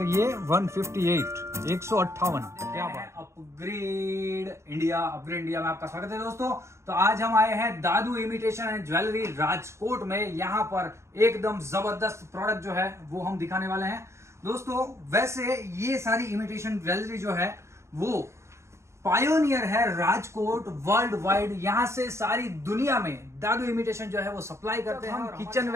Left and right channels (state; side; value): late; left; 0.13 ms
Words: ये 158 158। क्या बात। अपग्रेड इंडिया में आपका स्वागत है दोस्तों। तो आज हम आए हैं दादू इमिटेशन एंड ज्वेलरी राजकोट में। यहाँ पर एकदम जबरदस्त प्रोडक्ट जो है वो हम दिखाने वाले हैं दोस्तों। वैसे ये सारी इमिटेशन ज्वेलरी जो है वो पायोनियर है राजकोट वर्ल्ड वाइड। यहाँ से सारी दुनिया में दादू इमिटेशन जो है वो सप्लाई करते हैं। हम किचन